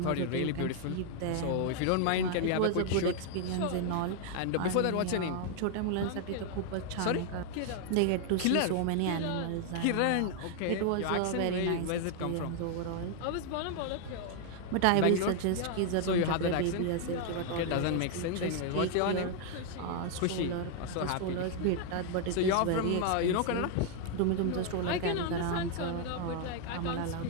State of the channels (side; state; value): both; different; correlation 0.00